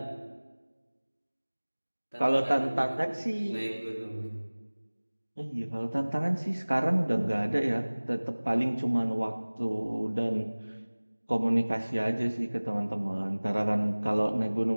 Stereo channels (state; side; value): inverted; both; correlation -1.00